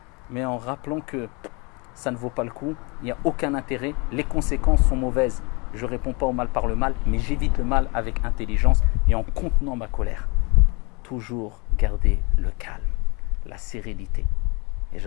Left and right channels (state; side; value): quieter; right; 29.7 dB